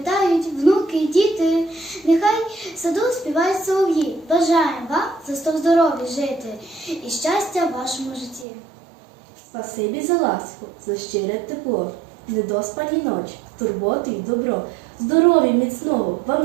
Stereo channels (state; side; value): drops out; left; at 8.5 s